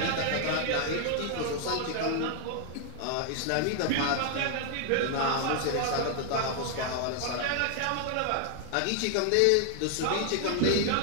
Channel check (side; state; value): both; different; correlation 0.00